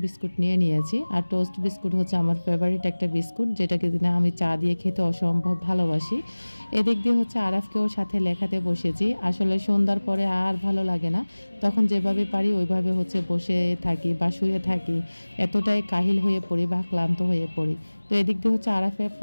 বিস্কুট নিয়েছি। আর টোস্ট বিস্কুট হচ্ছে আমার ফেভারিট একটা বিস্কুট, যেটাকে দিনে আমি চা দিয়ে খেতে অসম্ভব ভালোবাসি। এদিক দিয়ে হচ্ছে আরাফকেও সাথে লেখাতে বসেছি। আসলে সন্ধ্যার পরে আর ভালো লাগে না, তখন যেভাবে পারি ওইভাবে হচ্ছে বসে থাকি বা শুয়ে থাকি, এতটাই কাহিল হয়ে পড়ি বা ক্লান্ত হয়ে পড়ি। তো এদিক দিয়ে হচ্ছে আরাফে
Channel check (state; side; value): inverted; both; correlation -1.00